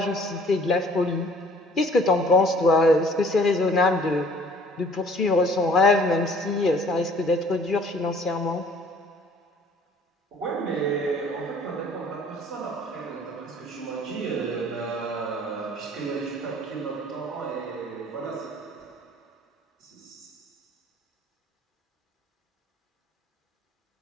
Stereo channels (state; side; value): normal; both; correlation 0.54